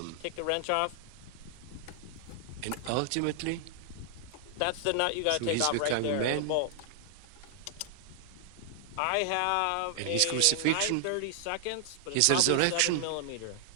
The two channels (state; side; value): different; both; correlation 0.00